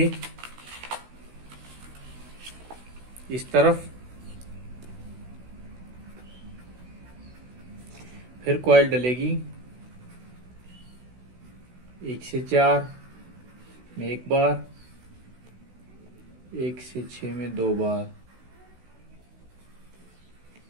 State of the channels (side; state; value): left; late; 16 ms